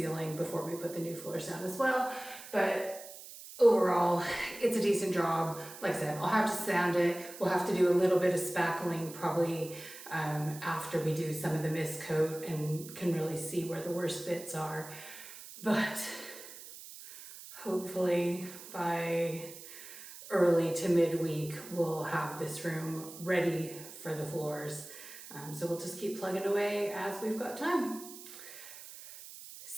before we put the new floors down as well. But overall, it's a decent job. Like I said, I'll have to sand it. We'll have to do a little bit of spackling probably after we do some of the mist coat and can really see where the worst bits are. But hopefully by early to midweek, we'll have this room ready for the floors. So we'll just keep plugging away as we've got time.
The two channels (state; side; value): noise; right; hiss, 14 dB below the sound